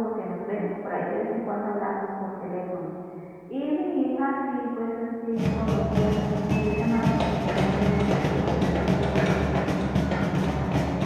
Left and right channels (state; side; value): identical; both; correlation 1.00